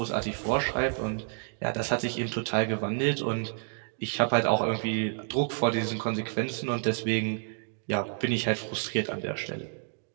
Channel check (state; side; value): silent; left; 58 dB below the other